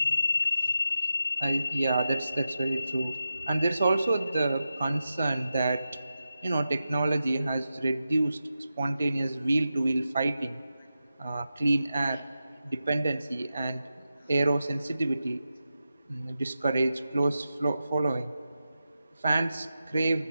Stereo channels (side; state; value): both; inverted; correlation -0.91